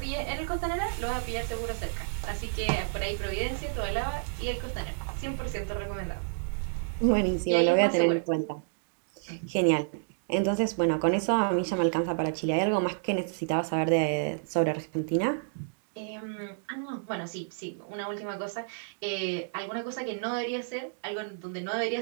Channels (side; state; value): left; silent; digital silence